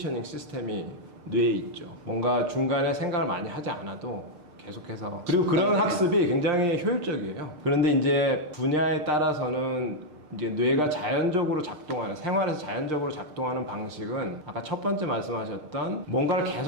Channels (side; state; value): left; late; 6.6 ms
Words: 시스템이 뇌에 있죠. 뭔가 중간에 생각을 많이 하지 않아도 계속해서 그리고 그런 학습이 굉장히 효율적이에요. 그런데 이제 분야에 따라서는 이제 뇌가 자연적으로 작동하는 생활에서 자연적으로 작동하는 방식은 아까 첫 번째 말씀하셨던 뭔가를